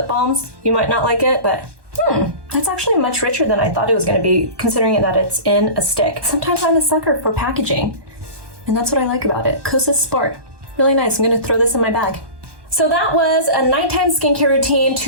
balms, you might not like it, but that's actually much richer than I thought it was going to be, considering that it's in a stick. Sometimes I'm a sucker for packaging, and that's what I like about it. Kosasport, really nice. I'm going to throw this in my bag. So that was a nighttime skincare routine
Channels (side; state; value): left; late; 1.2 ms